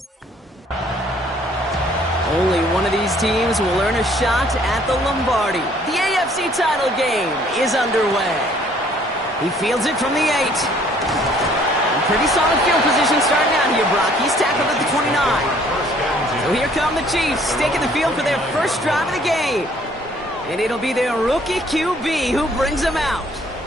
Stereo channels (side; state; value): both; normal; correlation 0.60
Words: only one of these teams will earn a shot at the Lombardi. The AFC title game is underway. He fields it from the 8. Pretty solid field position starting out here, Brock. He's tackled at the 29. So here come the Chiefs, taking the field for their first drive of the game. And it'll be their rookie QB who brings them out.